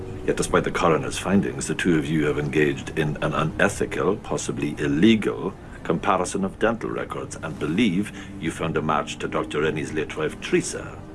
Yet despite the coroner's findings, the two of you have engaged in an unethical, possibly illegal, comparison of dental records and believe you found a match to Dr. Rennie's late wife, Teresa.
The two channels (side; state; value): both; identical; correlation 1.00